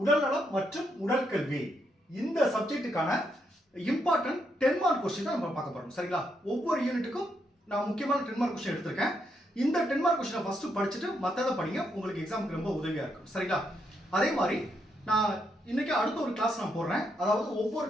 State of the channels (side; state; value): both; normal; correlation 0.78